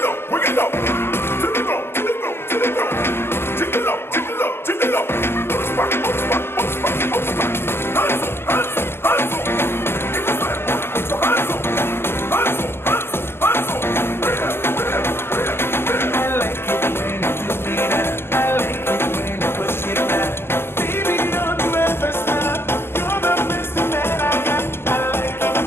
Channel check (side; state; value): right; late; 0.11 ms